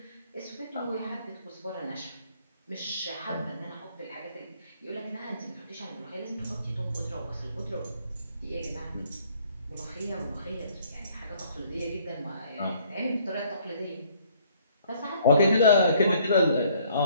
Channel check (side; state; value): both; inverted; correlation -0.62